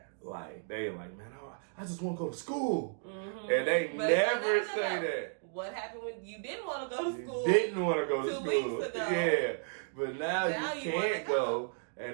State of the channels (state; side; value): silent; left; digital silence